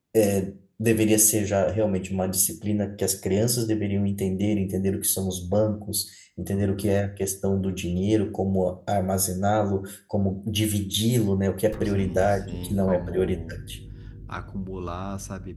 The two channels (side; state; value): both; identical; correlation 1.00